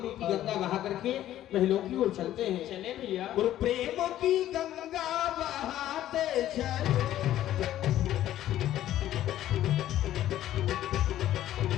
गंगा बहा करके महलों की ओर चलते हैं। चले भैया। और प्रेम की गंगा बहाते चलो,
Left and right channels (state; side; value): quieter; right; 12.8 dB